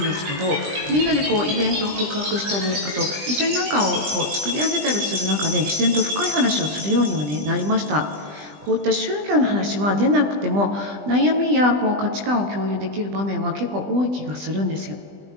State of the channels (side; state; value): left; late; 20 ms